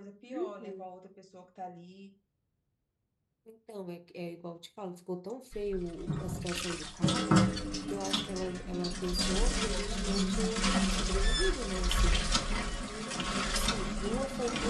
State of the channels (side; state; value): both; identical; correlation 1.00